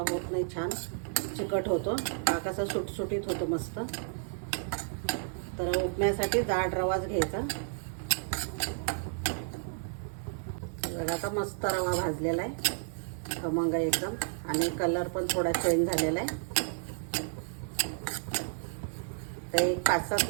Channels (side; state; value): left; silent; digital silence